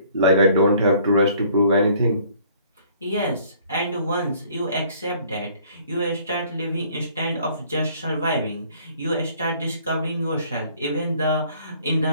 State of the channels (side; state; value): both; inverted; correlation -0.58